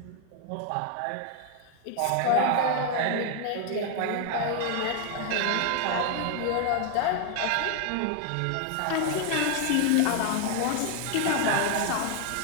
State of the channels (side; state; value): both; different; correlation 0.00